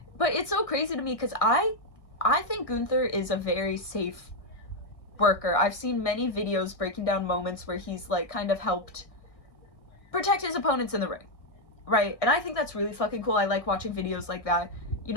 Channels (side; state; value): right; late; 1.6 ms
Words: But it's so crazy to me, because I think Gunther is a very safe worker. I've seen many videos breaking down moments where he's, like, kind of helped protect his opponents in the ring, right? And I think that's really fucking cool. I like watching videos like that, you